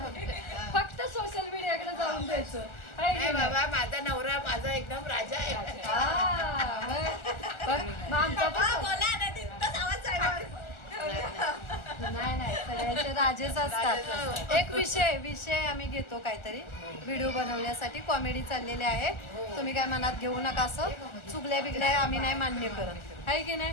फक्त सोशल मीडियाकडे जाऊन द्यायचं. बाबा माझा नवरा माझा एकदम राजा आहे. नाही सगळ्यांचे राजेच असतात. एक विषय आम्ही घेतो काहीतरी व्हिडिओ बनवण्यासाठी. कॉमेडी चाललेली आहे. तुम्ही काय मनात घेऊ नका. असं चुगल्या बिगल्या आम्ही नाही मान्य करत आहे की नाही.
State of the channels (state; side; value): late; right; 1.4 ms